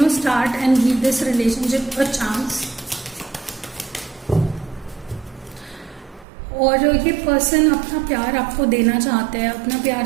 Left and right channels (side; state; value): left; drops out; at 6.2 s